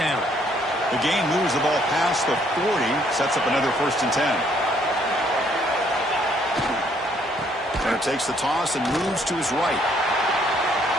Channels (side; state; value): both; normal; correlation 0.66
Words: The game moves the ball past the 40, sets up another 1st and 10. Turner takes the toss and moves to his right.